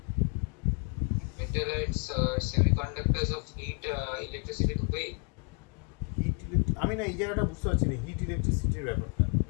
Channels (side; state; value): right; quieter; 38.5 dB